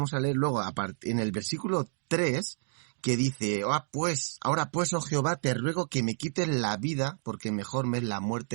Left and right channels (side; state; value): left; silent; digital silence